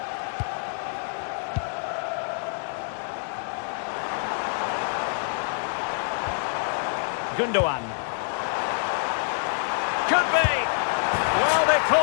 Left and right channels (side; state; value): right; silent; 57 dB below the other